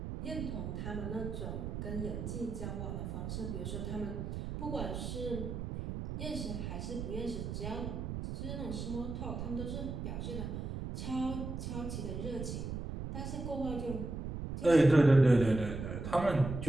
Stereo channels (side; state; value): right; noise; rumble, 5 dB below the sound